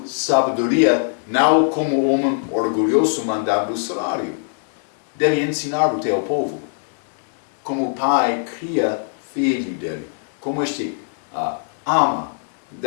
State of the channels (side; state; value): right; silent; digital silence